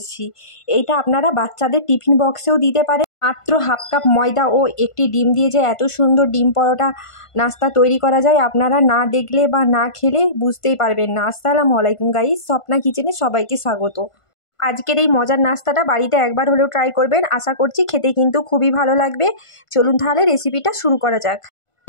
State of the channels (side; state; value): right; late; 1.5 ms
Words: এইটা আপনারা বাচ্চাদের টিফিন বক্সেও দিতে পারেন। মাত্র হাফ কাপ ময়দা ও একটি ডিম দিয়ে যে এত সুন্দর ডিম পরোটা নাস্তা তৈরি করা যায়, আপনারা না দেখলে বা না খেলে বুঝতেই পারবেন না। আসসালামু আলাইকুম গাইস, স্বপ্না কিচেনে সবাইকে স্বাগত। আজকের এই মজার নাস্তাটা বাড়িতে একবার হলেও ট্রাই করবেন, আশা করছি খেতে কিন্তু খুবই ভালো লাগবে। চলুন তাহলে রেসিপিটা শুরু করা যাক।